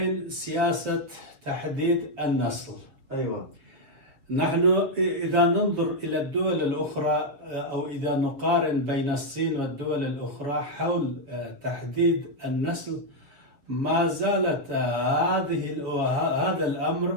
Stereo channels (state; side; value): late; left; 7.2 ms